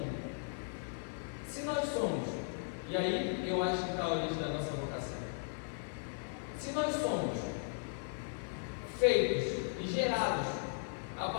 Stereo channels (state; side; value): silent; right; 53 dB below the other